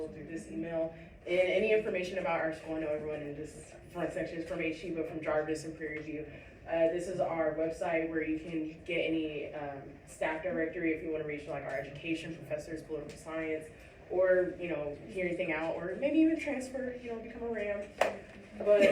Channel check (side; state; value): both; identical; correlation 1.00